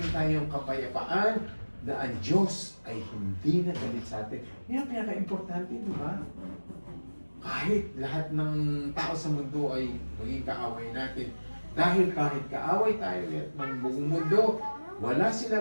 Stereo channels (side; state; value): both; inverted; correlation -1.00